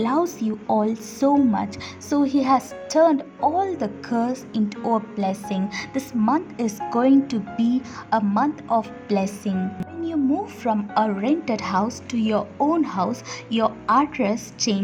loves you all so much, so He has turned all the curse into a blessing. This month is going to be a month of blessing. When you move from a rented house to your own house, your address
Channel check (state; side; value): identical; both; correlation 1.00